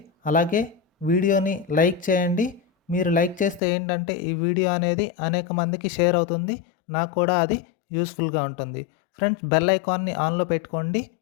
అలాగే వీడియోని లైక్ చేయండి. మీరు లైక్ చేస్తే ఏంటంటే ఈ వీడియో అనేది అనేక మందికి షేర్ అవుతుంది, నాకు కూడా అది యూస్ఫుల్గా ఉంటుంది. ఫ్రెండ్స్, బెల్ ఐకాన్ని ఆన్లో పెట్టుకోండి,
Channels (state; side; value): drops out; right; at 3.6 s